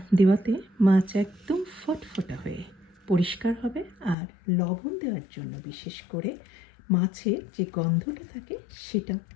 দেওয়াতে মাছ একদম ফটফটা হয়ে পরিষ্কার হবে, আর লবণ দেওয়ার জন্য বিশেষ করে মাছের যে গন্ধটা থাকে সেটা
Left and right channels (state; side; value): drops out; right; at 4.2 s